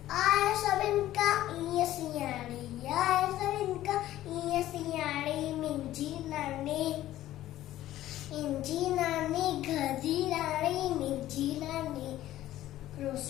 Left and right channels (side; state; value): right; quieter; 14.0 dB